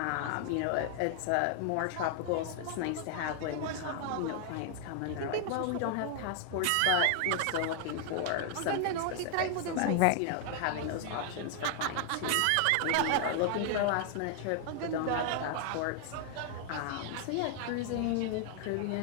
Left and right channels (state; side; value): different; both; correlation 0.00